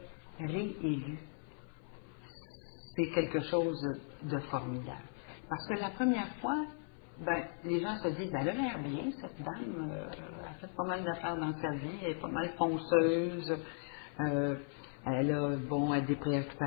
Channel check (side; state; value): right; silent; 53 dB below the other